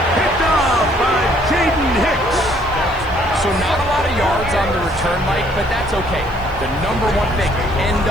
Picked off by Jaden Hicks. So not a lot of yards on the return, Mike, but that's okay. The number one thing, end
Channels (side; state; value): left; noise; hiss, 28 dB below the sound